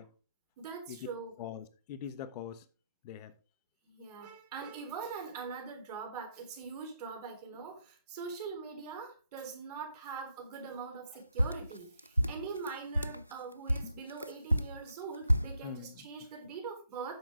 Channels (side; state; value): both; inverted; correlation -0.76